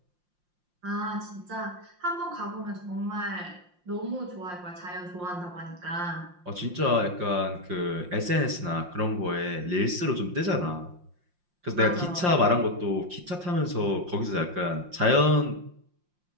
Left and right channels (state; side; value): late; left; 5.7 ms